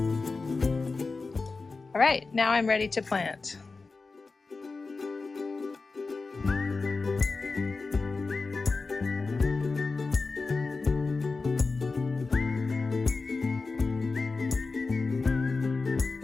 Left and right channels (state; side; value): quieter; right; 4.0 dB